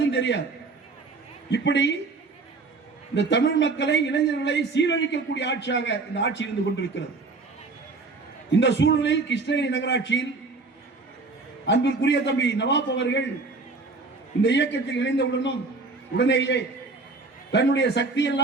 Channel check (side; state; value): left; quieter; 3.8 dB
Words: தெரியாது. இப்படி இந்த தமிழ் மக்களை இளைஞர்களை சீரழிக்கக்கூடிய ஆட்சியாக இந்த ஆட்சி இருந்து கொண்டிருக்கிறது. இந்த சூழ்நிலையில் கிருஷ்ணகிரி நகராட்சியில் அன்பிற்குரிய தம்பி நவாப் அவர்கள் இந்த இயக்கத்தில் இணைந்தவுடனும் உடனேயே தன்னுடைய